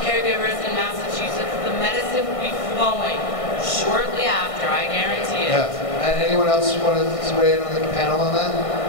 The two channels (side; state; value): right; late; 1.6 ms